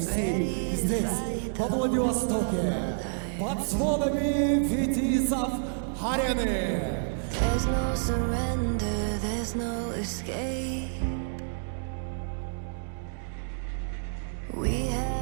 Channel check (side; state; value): left; silent; digital silence